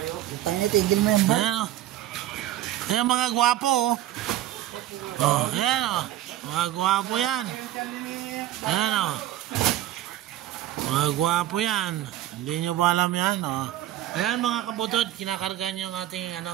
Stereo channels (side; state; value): left; quieter; 13.5 dB